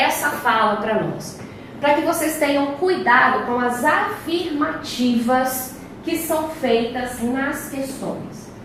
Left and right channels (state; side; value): identical; both; correlation 1.00